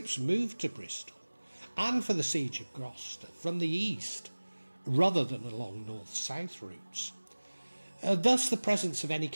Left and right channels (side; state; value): both; inverted; correlation -1.00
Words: moved to Bristol and for the siege of Gloucester from the east, rather than along north-south routes. Thus the presence of any